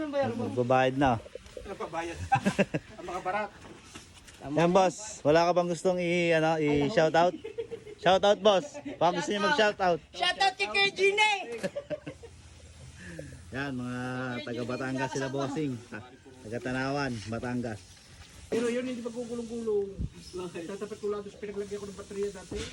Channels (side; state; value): both; identical; correlation 1.00